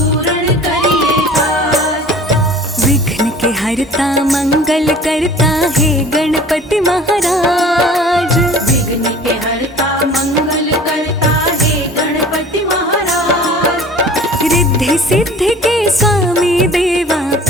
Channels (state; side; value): normal; both; correlation 0.45